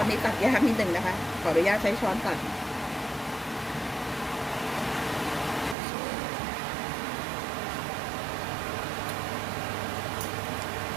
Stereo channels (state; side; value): drops out; left; at 5.8 s